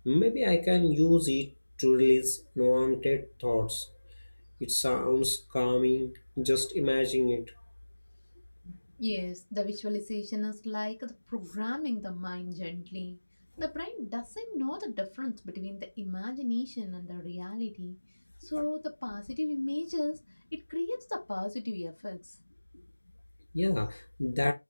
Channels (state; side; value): inverted; both; correlation -1.00